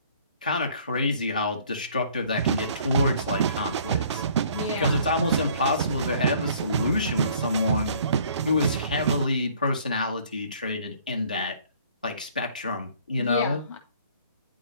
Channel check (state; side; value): inverted; both; correlation -0.56